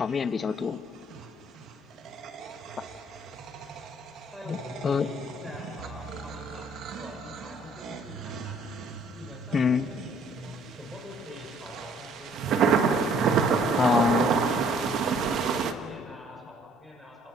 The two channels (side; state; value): both; normal; correlation 0.60